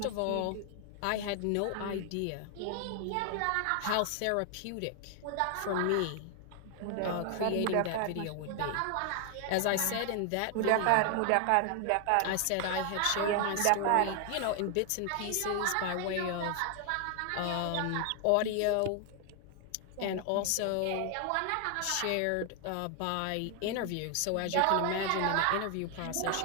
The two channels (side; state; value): both; different; correlation 0.00